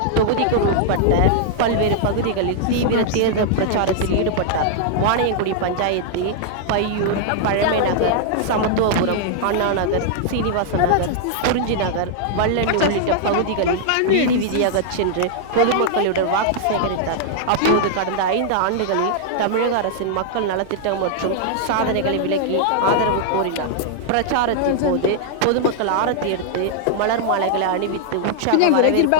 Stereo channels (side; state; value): both; different; correlation -0.01